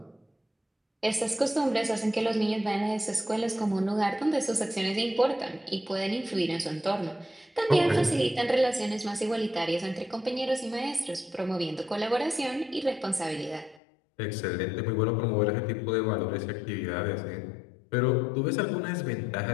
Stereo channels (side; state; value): right; drops out; at 13.8 s